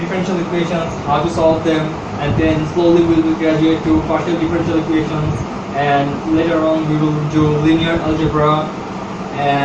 equations, how to solve them, and then slowly we will graduate to partial differential equations, and later on we will do linear algebra,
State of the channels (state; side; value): identical; both; correlation 1.00